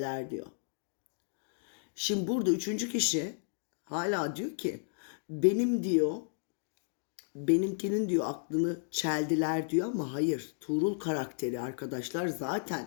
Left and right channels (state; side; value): silent; right; digital silence